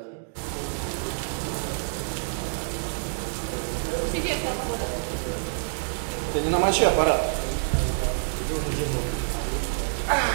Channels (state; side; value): silent; left; digital silence